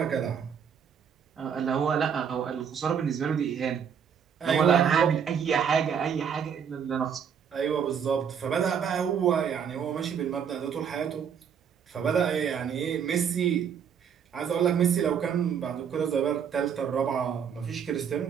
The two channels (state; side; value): quieter; left; 7.6 dB